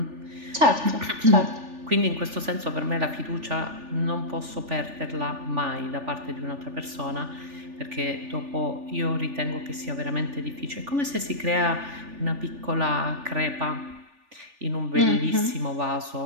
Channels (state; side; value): late; left; 3.4 ms